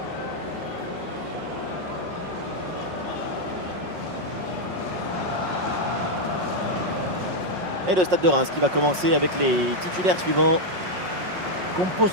Et le Stade de Reims qui va commencer avec les titulaires suivants.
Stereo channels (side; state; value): left; late; 5.5 ms